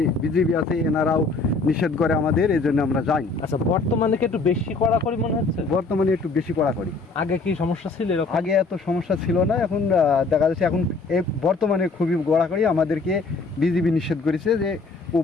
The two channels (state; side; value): quieter; right; 3.9 dB